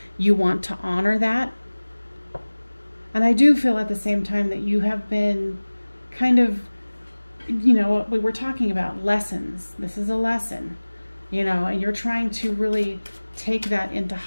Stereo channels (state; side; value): inverted; both; correlation -1.00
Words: you want to honor that. And I do feel at the same time that you have been kind of, you know, what we were talking about, lessons. This is a lesson. You know, and you're trying to really take that into